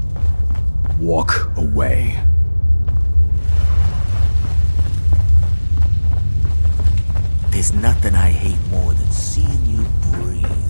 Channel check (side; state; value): both; inverted; correlation -1.00